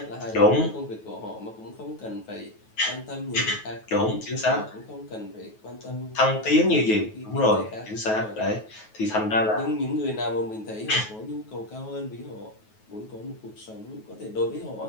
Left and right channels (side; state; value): right; late; 9.3 ms